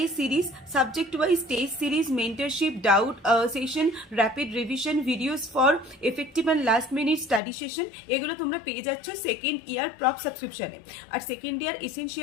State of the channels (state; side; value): drops out; right; at 7.4 s